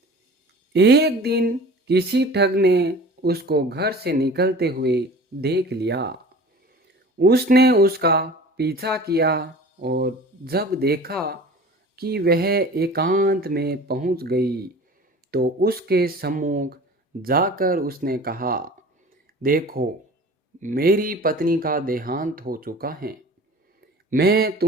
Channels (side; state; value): both; normal; correlation 0.41